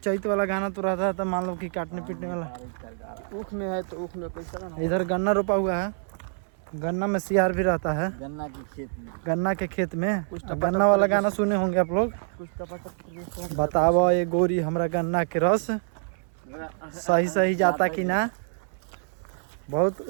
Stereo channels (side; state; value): left; silent; 60 dB below the other